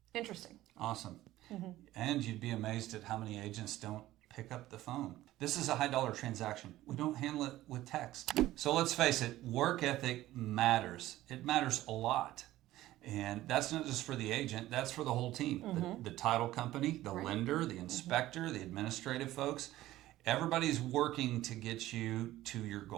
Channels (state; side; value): quieter; left; 15.5 dB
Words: Interesting. Awesome. And you'd be amazed at how many agents don't pick up the phone. This is a high dollar transaction. We don't handle it with text. So let's face it, work ethic matters. It matters a lot. And that's not just for the agent, that's for the whole team. The title company, the lender, the inspector, the administrative folks. Everybody's working to get you to your